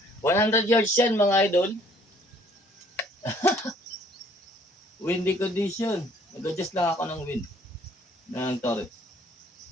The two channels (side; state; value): both; normal; correlation 0.59